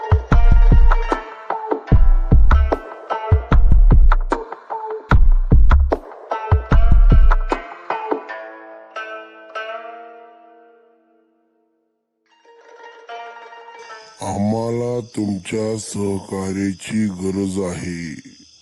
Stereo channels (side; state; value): both; identical; correlation 1.00